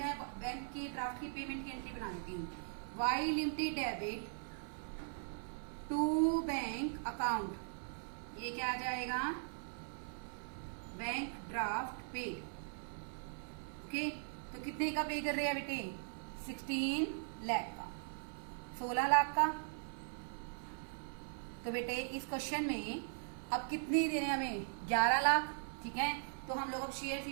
बैंक की ड्राफ्ट की पेमेंट की एंट्री बना देती हूँ, Y limited debit to bank account, ये क्या आ जाएगा बैंक ड्राफ्ट पे। ओके, तो कितने का पे कर रहे हैं बेटे 16 लाख का, 16 लाख का। तो बेटे इस क्वेश्चन में अब कितने देने हमें 11 लाख। ठीक है, तो हम लोग अब शेयर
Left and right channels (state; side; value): silent; left; 51 dB below the other